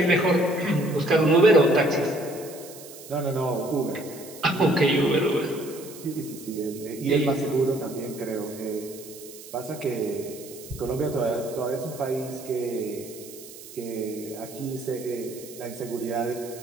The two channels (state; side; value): noise; right; hiss, 16 dB below the sound